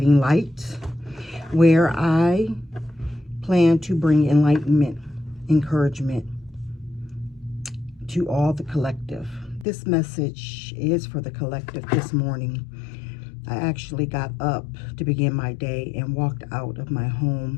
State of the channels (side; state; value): right; drops out; at 9.7 s